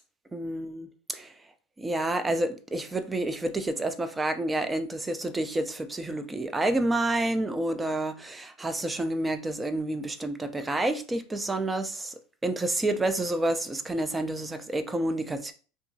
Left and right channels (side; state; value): both; normal; correlation 0.84